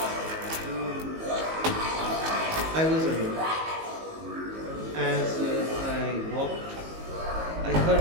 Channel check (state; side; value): late; left; 19 ms